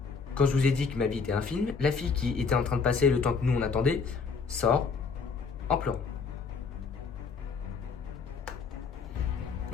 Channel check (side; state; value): right; quieter; 5.2 dB